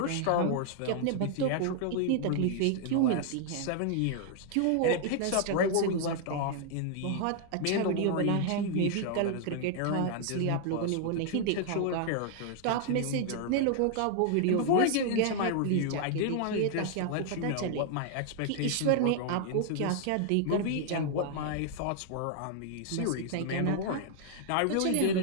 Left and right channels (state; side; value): different; both; correlation 0.00